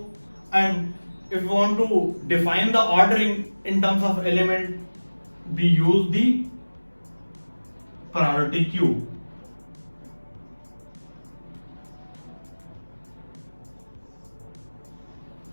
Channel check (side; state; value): both; inverted; correlation -1.00